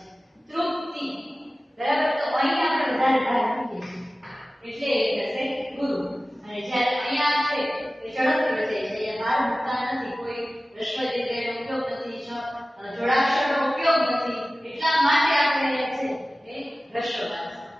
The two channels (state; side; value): normal; both; correlation 0.96